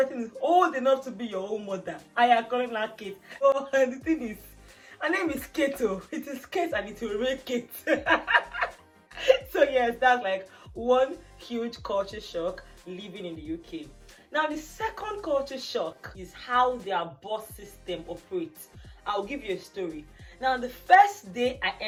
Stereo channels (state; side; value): identical; both; correlation 1.00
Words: is old enough to be your own mother. I am calling her Kate. Oh, and the thing is, her name is Kate. It is Kate and it will remain Kate. So yes, that's like one huge culture shock living in the UK. Now the second culture shock is how their bus system operates. I'll give you a story. Now the first day I